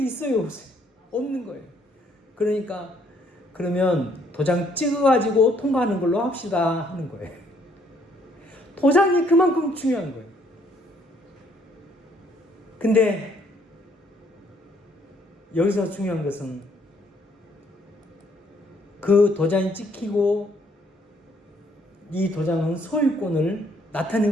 있어요, 없어요? 없는 거예요. 그러면 도장 찍어가지고 통과하는 걸로 합시다 하는 거예요. 도장이 그만큼 중요한 거예요. 근데 여기서 중요한 것은 그 도장이 찍히고 이 도장은 소유권을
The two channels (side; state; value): both; normal; correlation 0.66